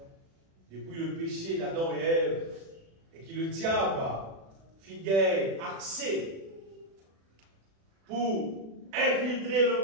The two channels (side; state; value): left; late; 36 ms